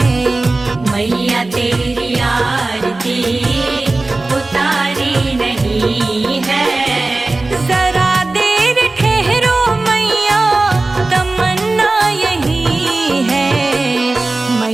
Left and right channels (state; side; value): quieter; left; 3.2 dB